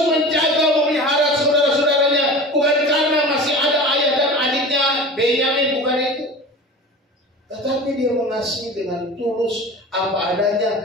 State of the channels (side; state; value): both; normal; correlation 0.35